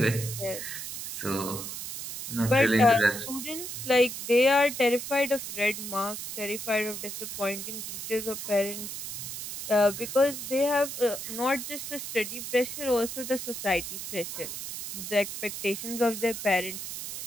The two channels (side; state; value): right; noise; hiss, 7 dB below the sound